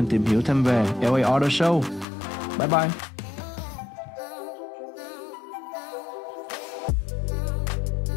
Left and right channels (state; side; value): drops out; right; at 2.1 s